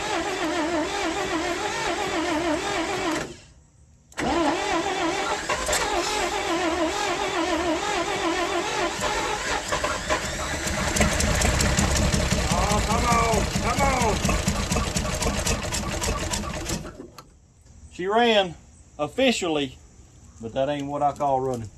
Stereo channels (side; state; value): both; identical; correlation 1.00